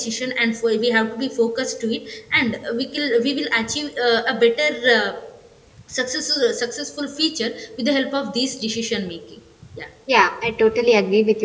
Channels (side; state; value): both; identical; correlation 1.00